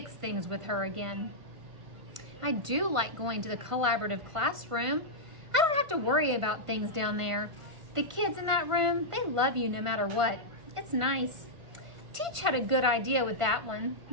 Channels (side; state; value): left; late; 1.5 ms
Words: things with her again. I do like going to the collaborative classroom. I don't have to worry about things down there. The kids in that room, they love you no matter what. It's nice. Teach had a good idea with that one.